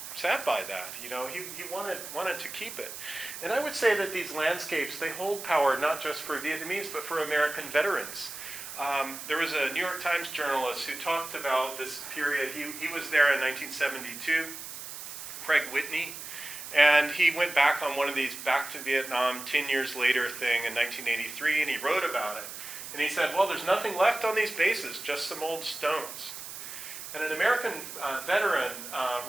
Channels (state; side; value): noise; right; hiss, 10 dB below the sound